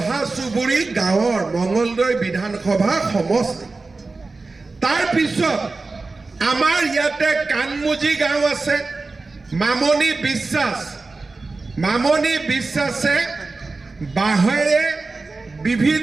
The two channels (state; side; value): quieter; left; 3.7 dB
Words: চুবুৰী গাঁৱৰ মঙলদৈ বিধানসভা সমষ্টি তাৰ পিছত আমাৰ ইয়াতে কানমুজি গাঁও আছে মামনি বিশ্বাসে বাঁহেৰে